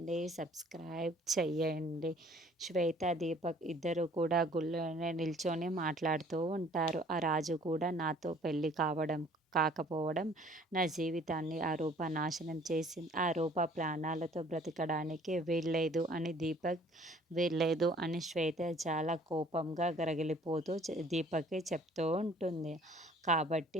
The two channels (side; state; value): both; normal; correlation 0.56